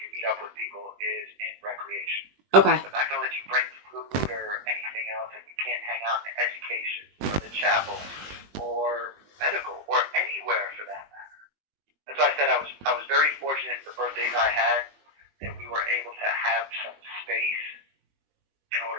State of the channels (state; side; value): late; left; 20 ms